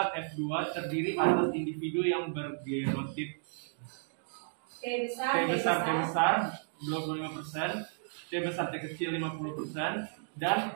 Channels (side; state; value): left; silent; digital silence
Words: F2 terdiri atas individu yang bergenotip. T besar 25%, T besar T kecil 50%,